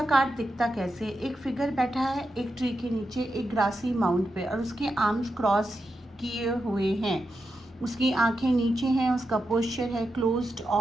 कार्ड दिखता कैसे? एक फिगर बैठा है एक ट्री के नीचे, एक ग्रासी माउंट पे, और उसके आर्म्स क्रॉस किए हुए हैं, उसकी आंखें नीचे हैं, उसका पोस्चर है क्लोज्ड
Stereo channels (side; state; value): both; normal; correlation 0.88